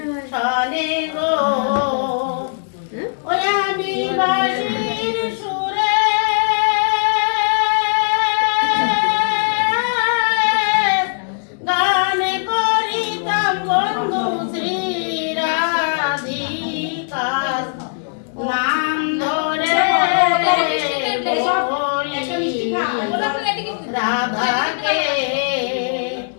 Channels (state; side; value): silent; right; digital silence